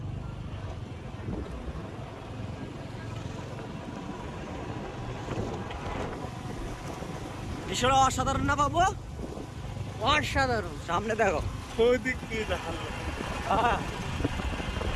দৃশ্যটা অসাধারণ না পাবো, অসাধারণ। সামনে দেখো,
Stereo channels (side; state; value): both; identical; correlation 1.00